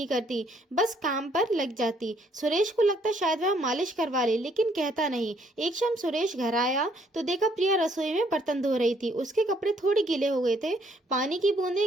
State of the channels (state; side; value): normal; both; correlation 0.67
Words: करती, बस काम पर लग जाती। सुरेश को लगता शायद वह मालिश करवा ले, लेकिन कहता नहीं। एक शाम सुरेश घर आया तो देखा प्रिया रसोई में बर्तन धो रही थी। उसके कपड़े थोड़े गीले हो गए थे, पानी की